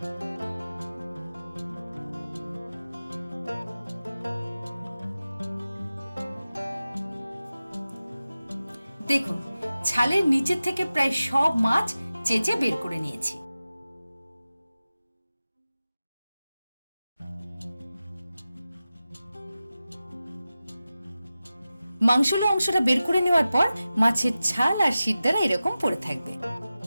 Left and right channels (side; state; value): both; inverted; correlation -0.94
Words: দেখুন, ছালের নিচের থেকে প্রায় সব মাছ চেঁচে বের করে নিয়েছি। মাংসলো অংশটা বের করে নেওয়ার পর মাছের ছাল আর শিরদাঁড়া এরকম পড়ে থাকবে।